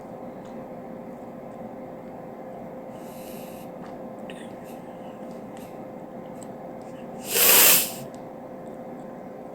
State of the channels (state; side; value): identical; both; correlation 1.00